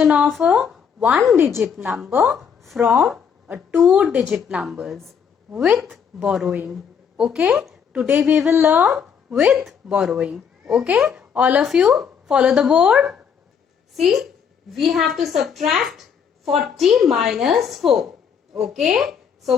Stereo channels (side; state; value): right; quieter; 7.1 dB